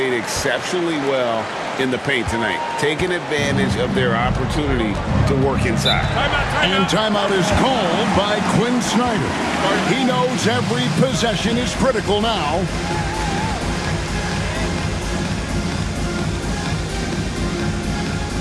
exceptionally well in the paint tonight, taking advantage of their opportunity to work inside. And timeout is called by Quinn Snyder. He knows every possession is critical now.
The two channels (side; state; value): both; identical; correlation 1.00